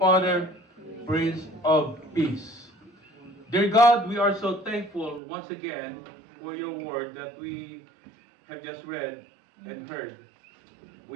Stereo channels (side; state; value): left; drops out; at 5.2 s